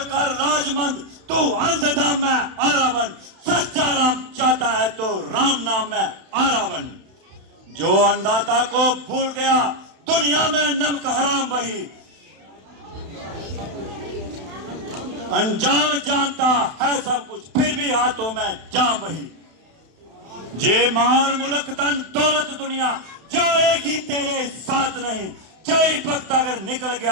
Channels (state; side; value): late; left; 31 ms